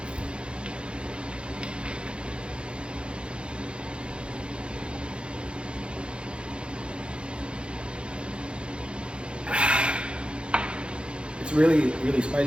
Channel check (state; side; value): late; left; 0.056 ms